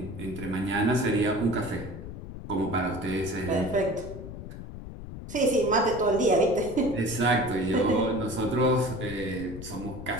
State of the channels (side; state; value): left; noise; rumble, 11 dB below the sound